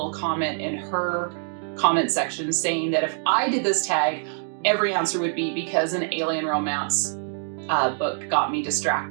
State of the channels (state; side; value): silent; left; 62 dB below the other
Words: comment in her comment section saying that if I did this tag, every answer would be because an alien romance book got me